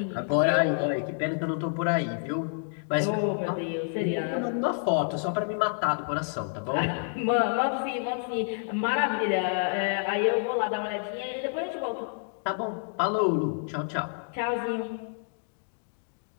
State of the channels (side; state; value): right; silent; digital silence